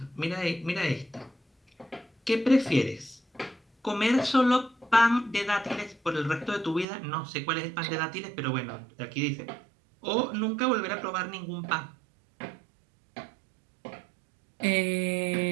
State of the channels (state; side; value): drops out; left; at 6.9 s